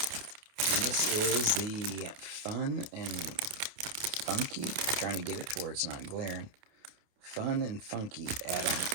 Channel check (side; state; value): left; late; 28 ms